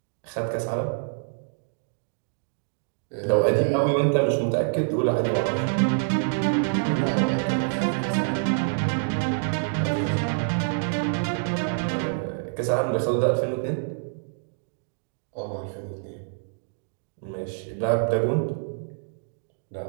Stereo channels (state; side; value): silent; left; digital silence